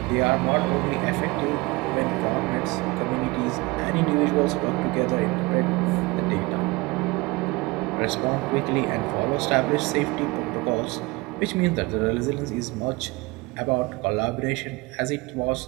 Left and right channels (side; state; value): left; quieter; 23.8 dB